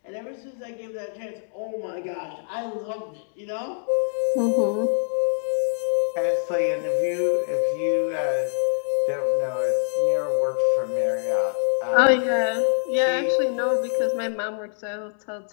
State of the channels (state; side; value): silent; right; digital silence